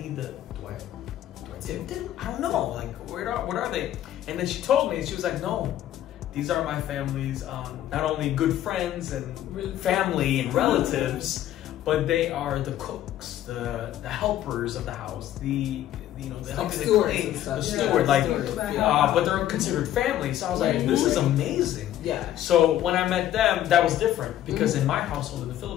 tip them? I don't know. Like, what are they? And then she told me, she was like, no, these are my family's not only good friends and family and relatives, but they are the cooks, the helpers of the house, the steward, but they're considered family. So I was like, this is amazing. Yeah. So when I met them, that was different because in my household in the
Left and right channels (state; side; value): quieter; right; 12.3 dB